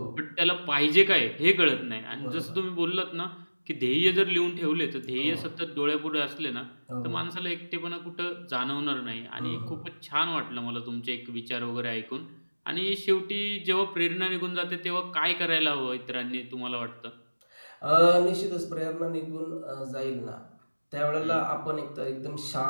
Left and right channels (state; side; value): inverted; both; correlation -1.00